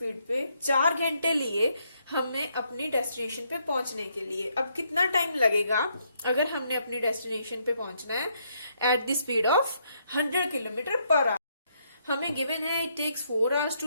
पे 4 घंटे लिए हमने अपनी destination पे पहुंचने के लिए। अब कितना टाइम लगेगा अगर हमने अपनी डेस्टिनेशन पे पहुंचना है at the speed of 100 kilometre per hour. हमें गिवन है it takes 4 hours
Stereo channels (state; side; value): inverted; both; correlation -0.74